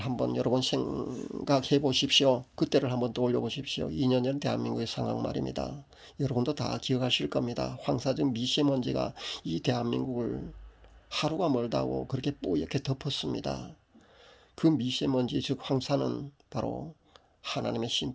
여러분 생각해 보십시오. 그때를 한번 떠올려 보십시오. 2년 전 대한민국의 상황 말입니다. 여러분도 다 기억하실 겁니다. 황사적 미세먼지가 이 대한민국을 하루가 멀다고 그렇게 뿌옇게 덮었습니다. 그 미세먼지 즉 황사는 바로 하나님의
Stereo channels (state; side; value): identical; both; correlation 1.00